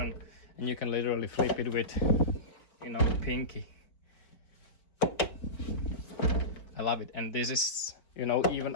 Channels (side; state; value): right; late; 4.4 ms